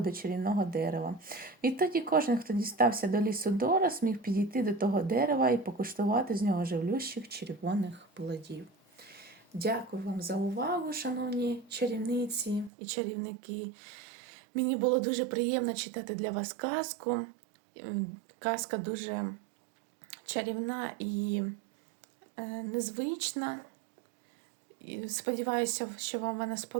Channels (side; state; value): left; drops out; at 12.7 s